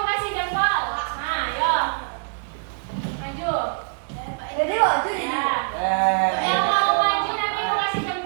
Maju. Jadi maju jadi. Ya. Yang mau maju nanti mau kasih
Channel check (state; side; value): silent; left; 63 dB below the other